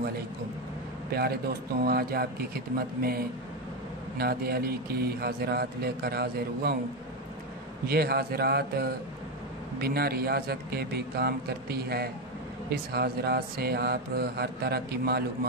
अलैकुम। प्यारे दोस्तों, आज आपकी खिदमत में नादे अली की हाज़रात लेकर हाज़िर हुआ हूँ। ये हाज़रात बिना रियाज़त के भी काम करती है। इस हाज़रात से आप हर तरह की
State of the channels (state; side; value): normal; both; correlation 0.10